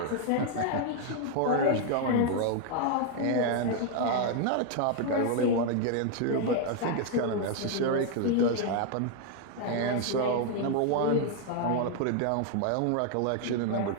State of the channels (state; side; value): different; both; correlation 0.00